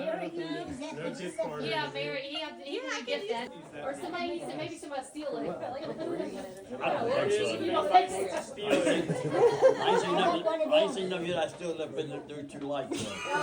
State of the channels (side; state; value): both; identical; correlation 1.00